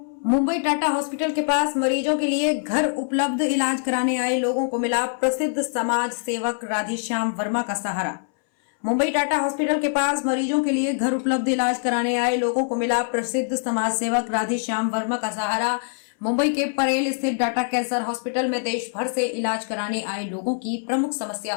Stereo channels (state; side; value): silent; right; 63 dB below the other